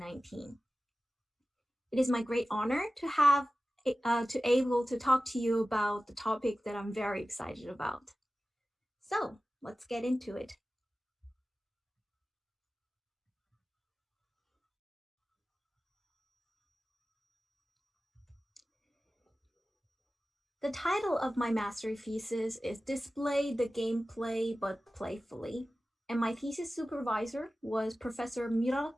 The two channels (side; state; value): both; normal; correlation 0.95